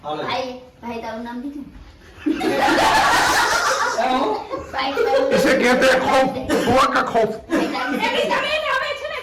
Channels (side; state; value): both; identical; correlation 1.00